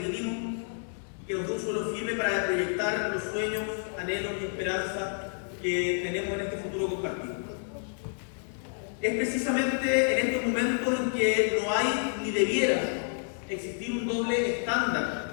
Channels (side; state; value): right; silent; digital silence